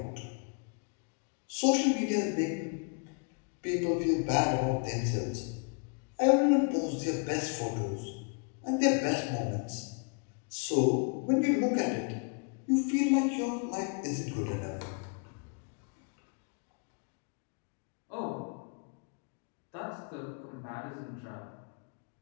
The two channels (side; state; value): right; quieter; 37.7 dB